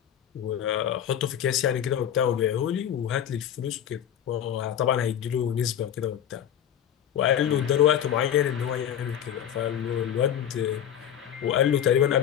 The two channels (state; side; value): quieter; right; 9.8 dB